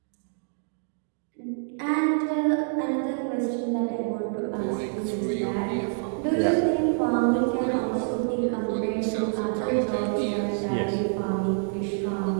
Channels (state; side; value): silent; left; digital silence